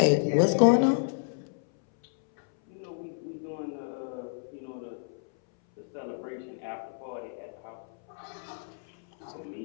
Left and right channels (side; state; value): right; silent; 58 dB below the other